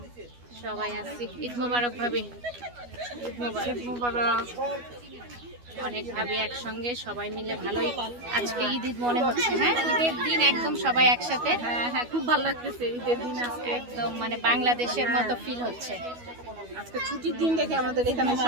সবাই আসছি। ঈদ মোবারক ভাবি, ঈদ মোবারক। ঈদ মোবারক। অনেক ভাবি একসঙ্গে সবাই মিলে, ভালোই আজকে ঈদ ঈদ মনে হচ্ছে। হ্যাঁ, ঈদের দিন একদম সবাই একসাথে। হ্যাঁ হ্যাঁ, খুব ভালো লাগতেছে ঈদের দিন আজকে, একদম মানে বাংলাদেশের মতো ফিল হচ্ছে। আজকে ছুটির দিন দেখে আমাদের এখানে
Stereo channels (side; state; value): left; late; 12 ms